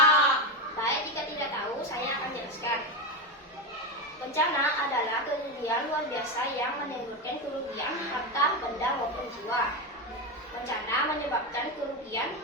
Baik, jika tidak tahu, saya akan jelaskan. Bencana adalah kerugian luar biasa yang menimbulkan kerugian harta, benda, maupun jiwa. Bencana menyebabkan kerugian,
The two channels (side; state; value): both; normal; correlation 0.14